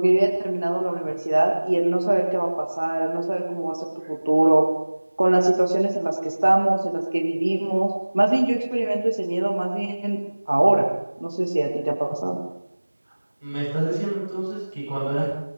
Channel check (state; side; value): inverted; both; correlation -1.00